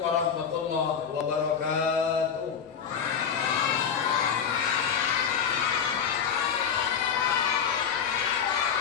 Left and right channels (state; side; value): quieter; right; 7.3 dB